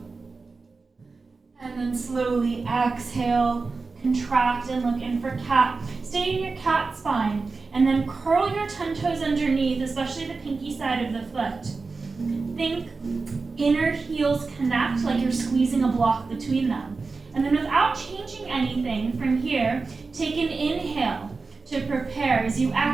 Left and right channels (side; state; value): left; quieter; 4.1 dB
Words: And then slowly exhale, contract, and look in for cat. Stay in your cat spine, and then curl your 10 toes underneath, especially the pinky side of the foot. Think inner heels connect like you're squeezing a block between them. And then without changing anything from here, take an inhale to prepare. As you